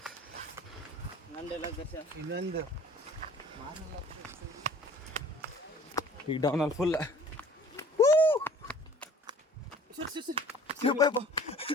ಈಗ ಡೌನಲ್ಲಿ ಫುಲ್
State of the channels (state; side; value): normal; both; correlation 0.50